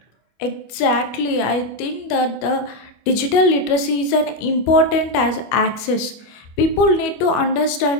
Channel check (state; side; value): late; right; 25 ms